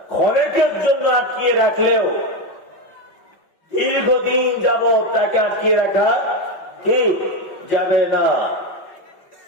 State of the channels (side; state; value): right; late; 5.5 ms